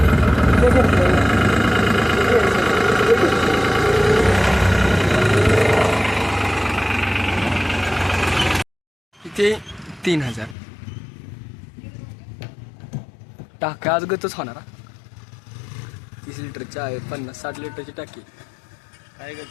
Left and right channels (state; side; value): drops out; right; at 10.6 s